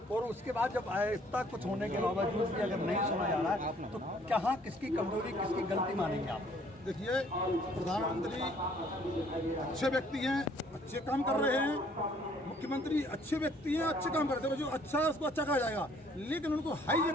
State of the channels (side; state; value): both; normal; correlation 0.61